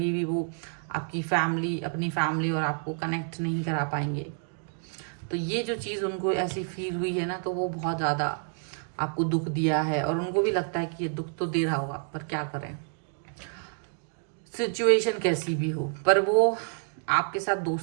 भी वो आपकी फैमिली अपनी फैमिली और आपको कनेक्ट नहीं करा पाएंगे। तो ये जो चीज़ उनको ऐसी फील हुई है ना, तो वो बहुत ज़्यादा आपको दुख दिया है, और उनको भी लगता है कि ये दुख तो दे रहा होगा पर क्या करें, सिचुएशन कैसी भी हो। पर वो आपके साथ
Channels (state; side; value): silent; left; 55 dB below the other